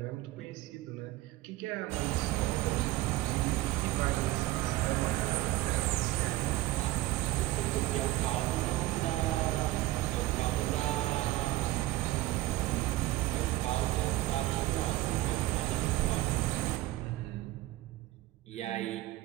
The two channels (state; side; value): quieter; left; 17.0 dB